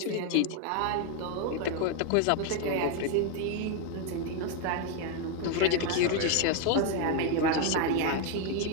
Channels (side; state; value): both; different; correlation 0.01